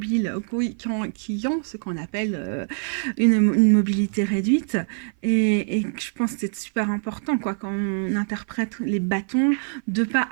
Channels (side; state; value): left; silent; 57 dB below the other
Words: qui ont ce qu'on appelle une mobilité réduite. Et je pense que c'est super important quoi, quand on interprète les bâtons, de ne pas